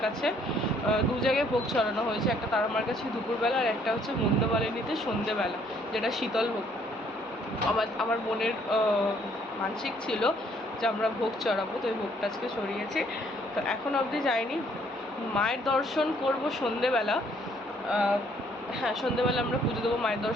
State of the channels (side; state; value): both; normal; correlation 0.64